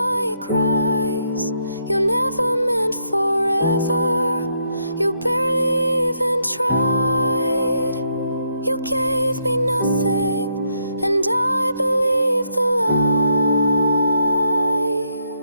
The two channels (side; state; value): both; inverted; correlation -0.76